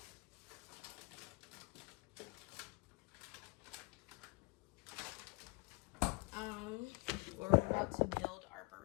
We're about to build our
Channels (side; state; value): right; quieter; 29.2 dB